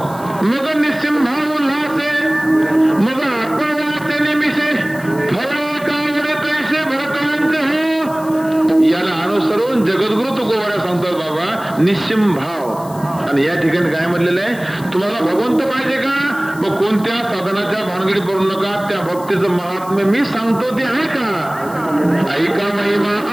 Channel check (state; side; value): noise; left; hiss, 20 dB below the sound